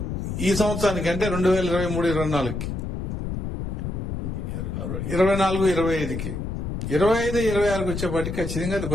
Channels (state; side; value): noise; left; rumble, 4 dB below the sound